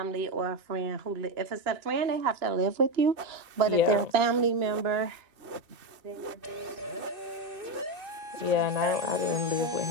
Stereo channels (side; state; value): left; late; 2.6 ms